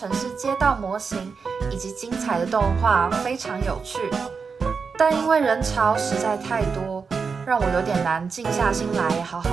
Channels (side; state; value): left; quieter; 5.3 dB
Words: 市街道模型以及精彩的动画非常有趣，但因为人潮实在太多，让我有点难静下心来好